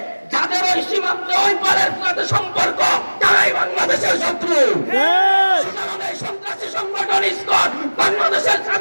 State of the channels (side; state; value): both; inverted; correlation -1.00